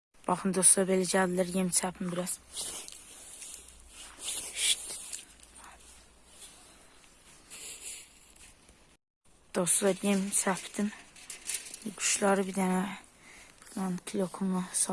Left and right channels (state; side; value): identical; both; correlation 1.00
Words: Baxın dostlar, belə gəldilər, yem çəpim biraz. Dostlar, yem çəpdim. Quşları bir dənə kilokumla